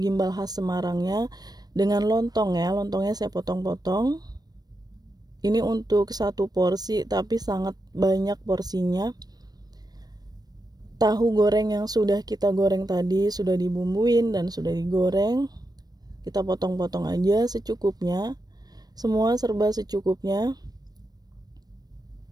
gimbal khas Semarangnya dengan lontong ya. Lontongnya saya potong-potong. Ini untuk 1 porsi tapi sangat banyak porsinya. Tahu goreng yang sudah kita goreng tadi sudah dibumbuin dan sudah digoreng. Kita potong-potong aja secukupnya. Semua serba secukupnya.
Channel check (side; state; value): left; late; 0.19 ms